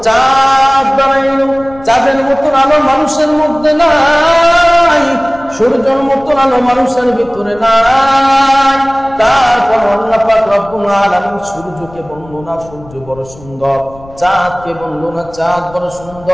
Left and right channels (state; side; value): noise; left; rumble, 21 dB below the sound